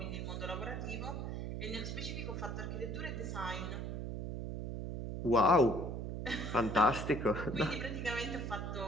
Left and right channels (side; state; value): right; noise; hum, 4 dB below the sound